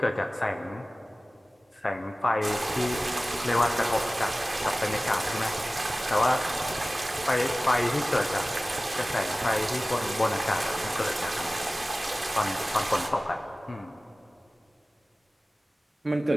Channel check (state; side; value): normal; both; correlation 0.97